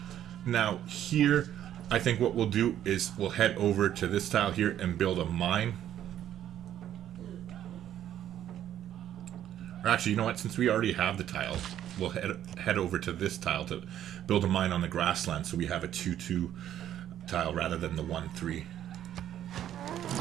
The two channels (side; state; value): left; quieter; 11.2 dB